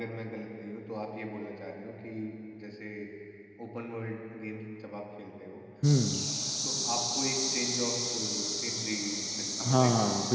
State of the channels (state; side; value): identical; both; correlation 1.00